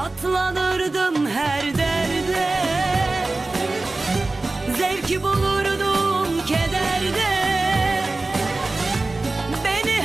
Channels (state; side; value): quieter; left; 3.2 dB